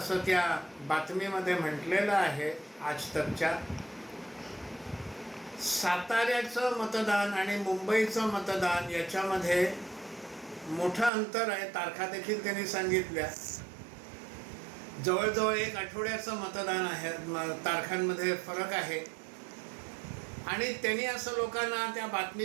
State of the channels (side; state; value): left; drops out; at 11.1 s